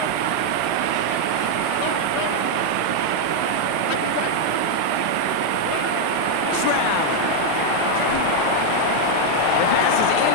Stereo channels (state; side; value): different; both; correlation 0.00